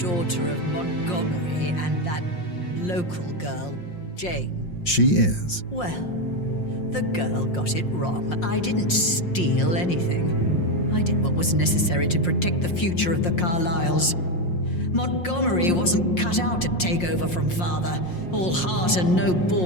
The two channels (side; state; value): right; late; 5.6 ms